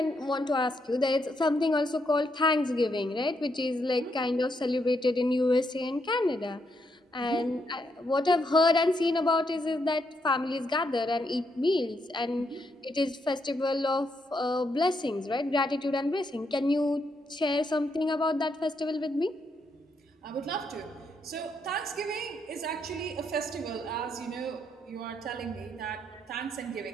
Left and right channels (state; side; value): normal; both; correlation 0.78